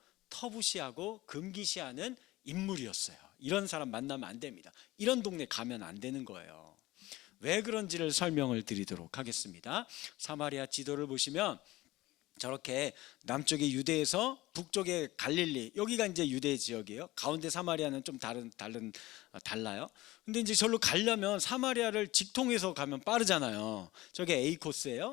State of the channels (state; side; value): quieter; right; 18.4 dB